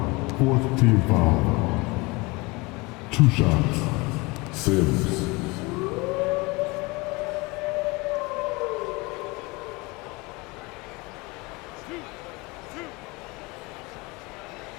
Fourth team foul. 2 shots. Sims.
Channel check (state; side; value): quieter; right; 25.2 dB